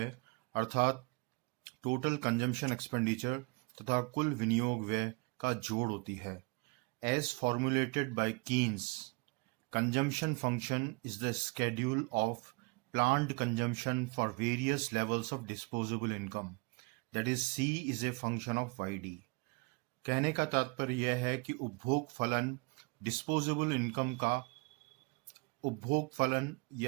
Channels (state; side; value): quieter; left; 29.9 dB